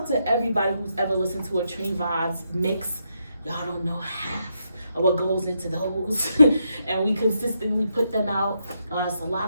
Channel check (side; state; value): both; inverted; correlation -0.80